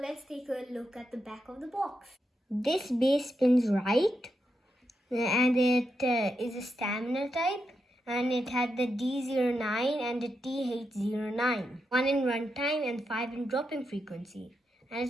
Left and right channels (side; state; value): both; normal; correlation 0.85